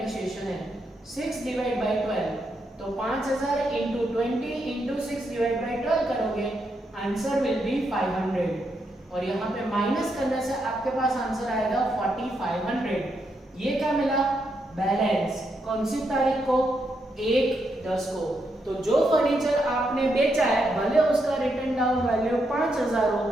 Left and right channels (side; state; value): both; normal; correlation 0.81